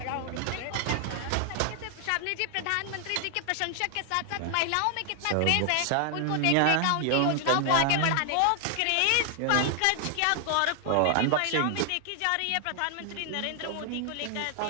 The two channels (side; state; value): both; different; correlation 0.00